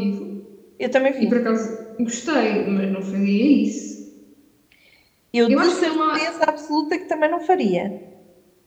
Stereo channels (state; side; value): identical; both; correlation 1.00